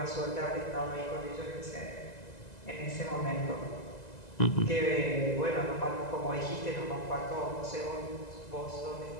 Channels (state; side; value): late; right; 2.0 ms